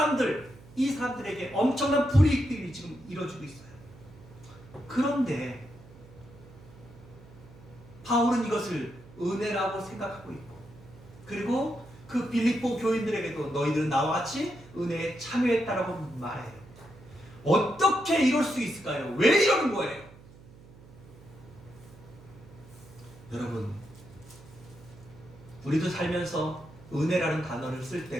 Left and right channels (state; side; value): noise; right; hum, 21 dB below the sound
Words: 엄청난 불이익들이 지금 이루어지고 있어요. 그런데 바울은 이것을 은혜라고 생각하고 있고 그리고 그 빌립보 교인들에게도 너희들은 나와 같이 은혜에 참여했다라고 말해요. 어떻게 이럴 수 있을까요? 왜 이러는 거예요? 여러분 우리도 살면서 은혜라는 단어를 쓸